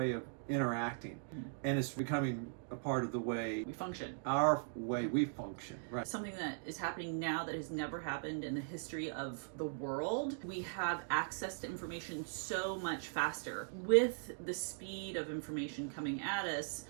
of interacting, and it's becoming a part of the way we function, our way we function. Right. Something that is happening now that has never happened in the history of the world. We have access to information so much faster with the speed of information coming at us.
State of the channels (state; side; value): silent; left; digital silence